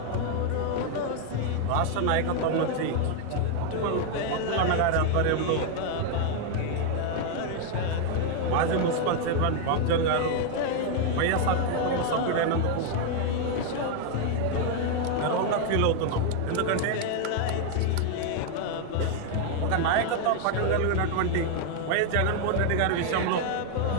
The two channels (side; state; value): both; different; correlation 0.00